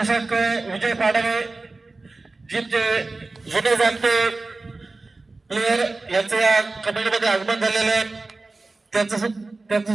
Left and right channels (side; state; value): left; quieter; 3.4 dB